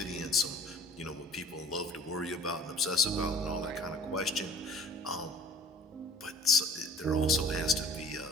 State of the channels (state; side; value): normal; both; correlation 0.48